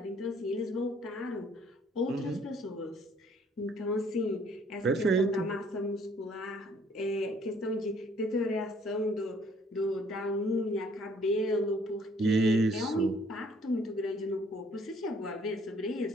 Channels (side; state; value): both; normal; correlation 0.61